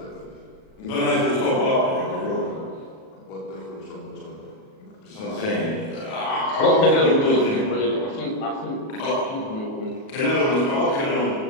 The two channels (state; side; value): late; right; 37 ms